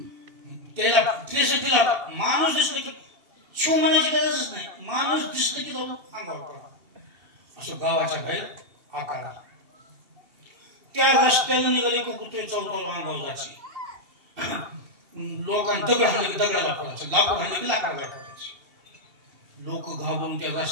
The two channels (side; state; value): left; late; 2.8 ms